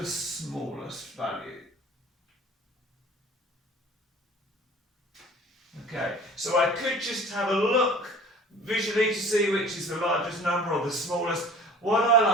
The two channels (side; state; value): both; normal; correlation 0.45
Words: smallest value. Okay, so I could just have a look visually to see which is the largest number or the smallest. What I